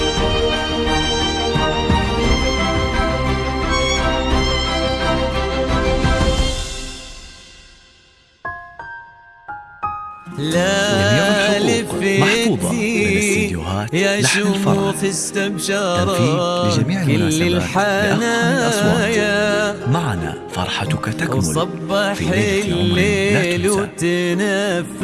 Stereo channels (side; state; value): both; identical; correlation 1.00